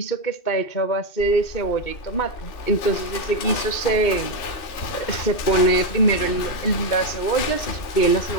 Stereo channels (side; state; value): right; late; 2.6 ms